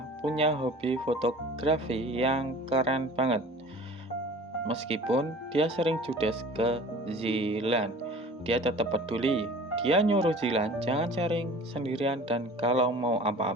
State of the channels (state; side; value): normal; both; correlation 0.43